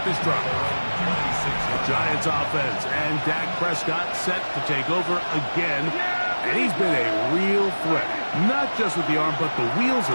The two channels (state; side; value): inverted; both; correlation -1.00